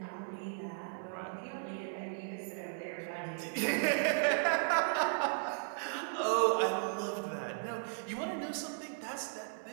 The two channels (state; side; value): silent; left; 54 dB below the other